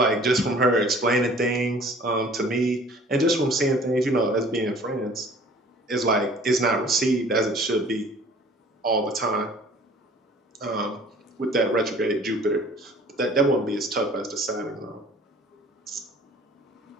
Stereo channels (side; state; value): both; normal; correlation 0.51